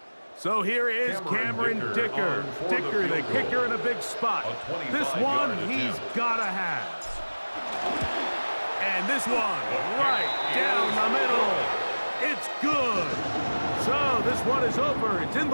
So here is Cameron Dicker. Dicker, the kicker, in a big spot. This one he's got to have. And this one right down the middle. It's good. So this one is over. It's in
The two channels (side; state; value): both; inverted; correlation -1.00